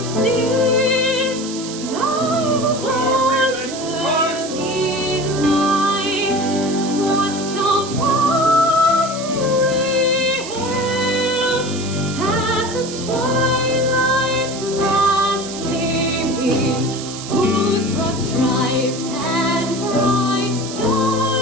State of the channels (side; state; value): right; noise; hiss, 11 dB below the sound